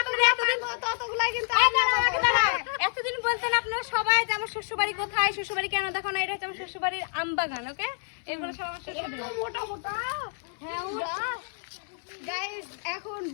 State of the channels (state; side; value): silent; right; 59 dB below the other